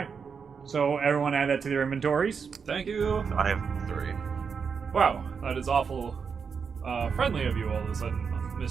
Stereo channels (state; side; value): quieter; left; 6.0 dB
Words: So everyone add that to their inventories. Thank you. I have 3. Wow, that is awful friendly of you all of a sudden,